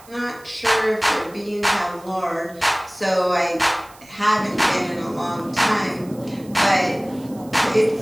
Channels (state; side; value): noise; right; hiss, 24 dB below the sound